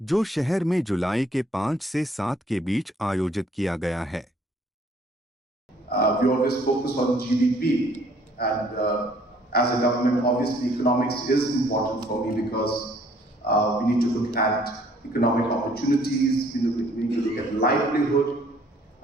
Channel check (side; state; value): both; normal; correlation 0.61